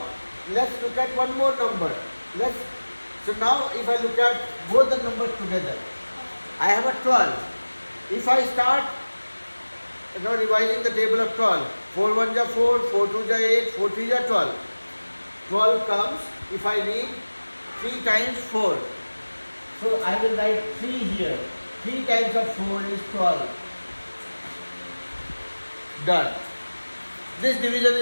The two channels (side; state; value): both; inverted; correlation -1.00